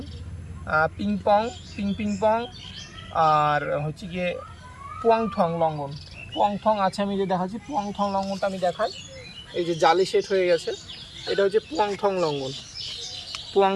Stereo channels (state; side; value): identical; both; correlation 1.00